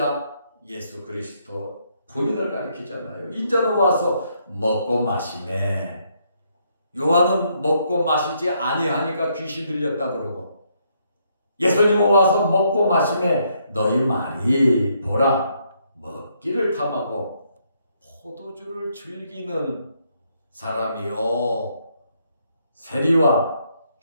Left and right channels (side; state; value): both; inverted; correlation -0.73